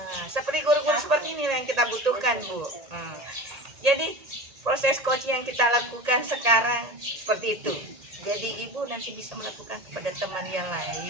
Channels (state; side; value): late; left; 1.8 ms